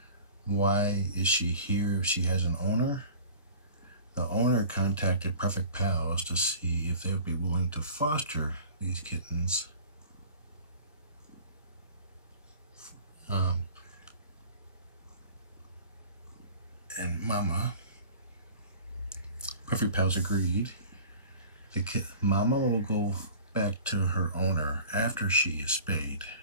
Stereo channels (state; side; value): inverted; both; correlation -0.43